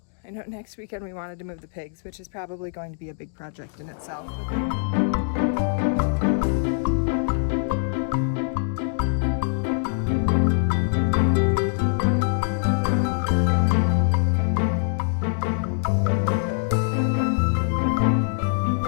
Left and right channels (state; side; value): silent; right; digital silence